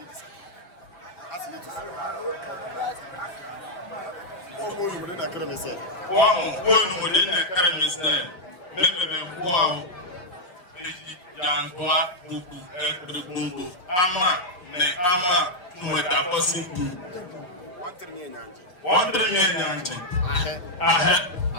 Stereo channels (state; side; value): late; right; 5.6 ms